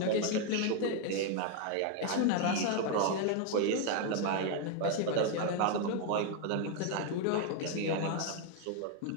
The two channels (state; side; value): different; both; correlation 0.01